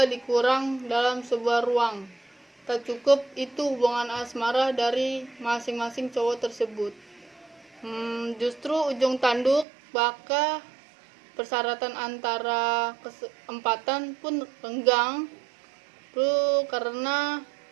dikurang dalam sebuah ruang. Tak cukup itu hubungan asmara dari masing-masing cowok tersebut. Justru ujung tanduk baka persyaratan antara keempatan pun renggang karena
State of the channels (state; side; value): drops out; left; at 9.7 s